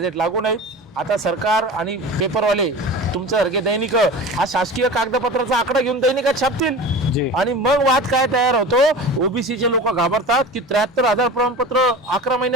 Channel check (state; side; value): normal; both; correlation 0.34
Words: लागू नाही. आता सरकार आणि पेपरवाले तुमच्यासारखे दैनिक हा शासकीय कागदपत्राचा आकडा घेऊन दैनिकात छापतील आणि मग वाद काय तयार होतो. ओबीसीचे लोक घाबरतात की 73,000 प्रमाणपत्र 11